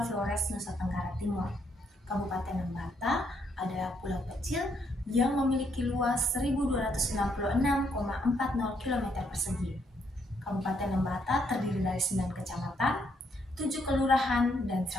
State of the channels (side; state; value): both; normal; correlation 0.73